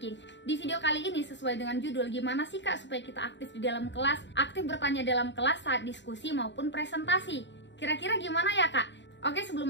Di video kali ini sesuai dengan judul, gimana sih kak supaya kita aktif di dalam kelas, aktif bertanya dalam kelas saat diskusi maupun presentasi. Kira-kira gimana ya kak? Oke, sebelum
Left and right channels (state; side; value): late; right; 0.52 ms